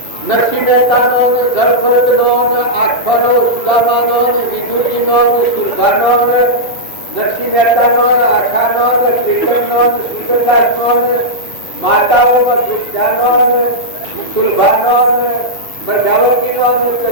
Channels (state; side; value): late; right; 2.9 ms